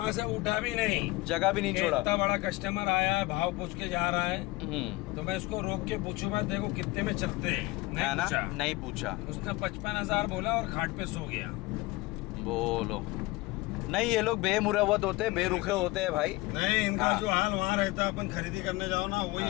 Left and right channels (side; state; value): right; quieter; 21.1 dB